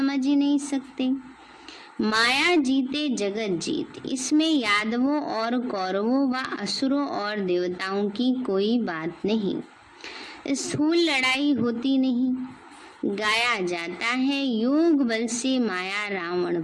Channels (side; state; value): both; identical; correlation 1.00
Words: ही नहीं सकते। माया जीते जगत जीत। इसमें यादवों और कौरवों व असुरों और देवताओं की कोई बात नहीं। स्थूल लड़ाई होती नहीं। गाया जाता है योग बल से माया रावण